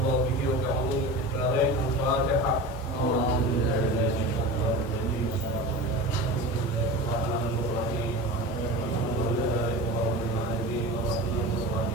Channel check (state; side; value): noise; right; hiss, 27 dB below the sound